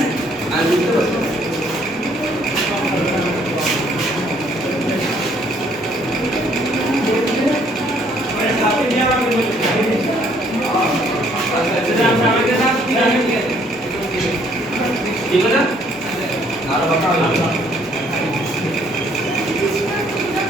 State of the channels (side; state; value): both; normal; correlation 0.64